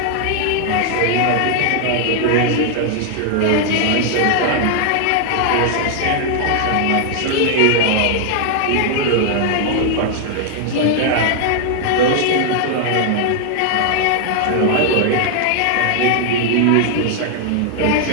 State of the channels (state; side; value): different; both; correlation 0.00